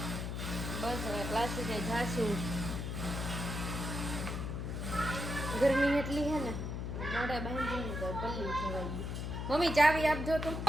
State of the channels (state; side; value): noise; left; hum, 3 dB below the sound